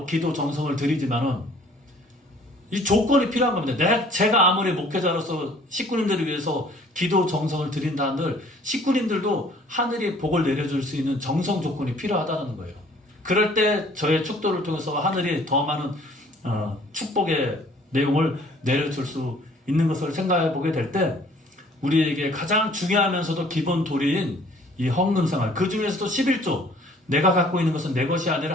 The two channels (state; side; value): normal; both; correlation 0.55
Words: 기도 정성을 드리지만은 이 조건이 필요한 겁니다. 제가 아무리 목회자로서 식구님들을 위해서 기도 정성을 드린다 한들 식구님들도 하늘이 복을 내려줄 수 있는 정성 조건이 필요하다는 거예요. 그럴 때 저의 축도를 통해서 하늘이 더 많은 축복의 내용을 내려줄 수 있는 것을 생각해 보게 될 때 우리에게 가장 중요하면서도 기본 도리인 이 헌금 생활, 그 중에서도 11조, 내가 갖고 있는 것은 내 것이